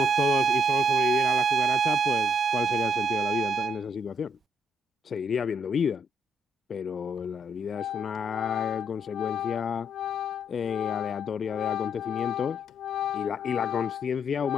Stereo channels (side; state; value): both; normal; correlation 0.72